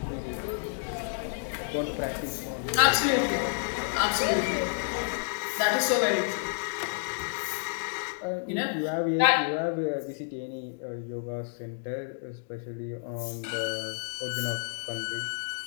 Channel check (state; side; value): silent; right; digital silence